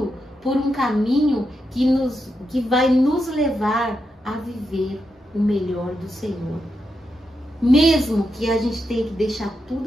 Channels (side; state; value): both; normal; correlation 0.85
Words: por um caminho que vai nos levar a viver o melhor do Senhor. Mesmo que a gente tenha que deixar